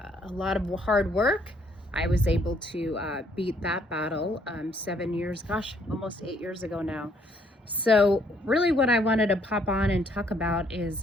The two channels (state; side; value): normal; both; correlation 0.67